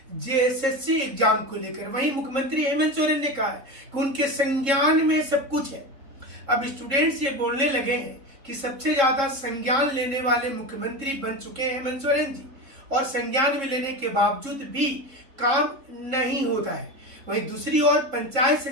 जेएसएससी एग्जाम को लेकर। वहीं मुख्यमंत्री हेमंत सोरेन ने कहा है कि उनके संज्ञान में सब कुछ है। अब स्टूडेंट्स ये बोलने लगे हैं कि सबसे ज्यादा संज्ञान लेने वाले मुख्यमंत्री बन चुके हैं हेमंत सोरेन जी, और संज्ञान में लेने के बावजूद भी काम नहीं होता है। वहीं दूसरी ओर पंचायत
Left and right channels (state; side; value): late; left; 3.7 ms